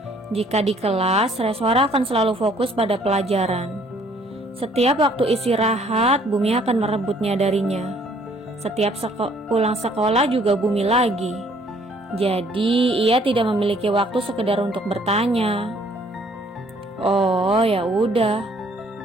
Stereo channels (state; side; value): normal; both; correlation 0.61